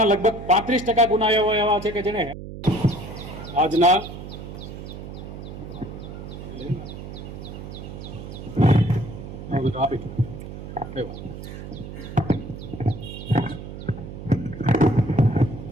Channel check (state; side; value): noise; right; hum, 10 dB below the sound